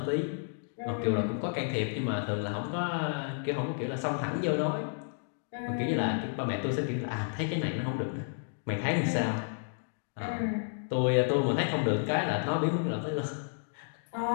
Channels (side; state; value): right; silent; digital silence